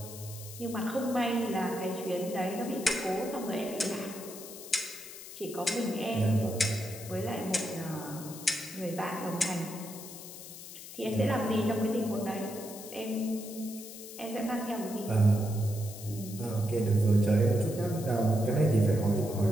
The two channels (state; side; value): noise; left; hiss, 13 dB below the sound